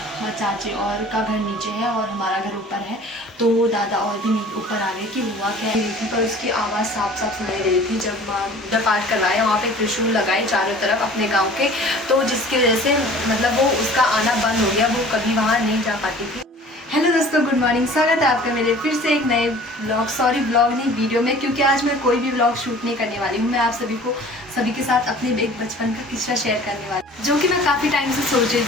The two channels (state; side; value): normal; both; correlation 0.47